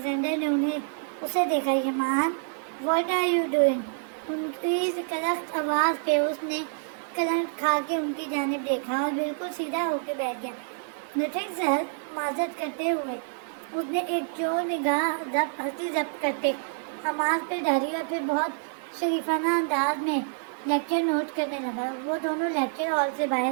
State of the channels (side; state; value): left; silent; digital silence